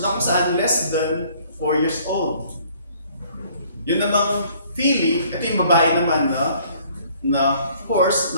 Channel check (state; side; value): inverted; both; correlation -0.59